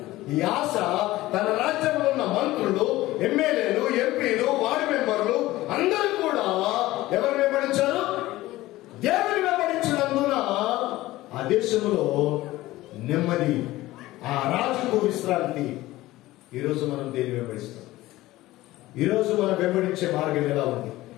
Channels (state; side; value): quieter; right; 17.3 dB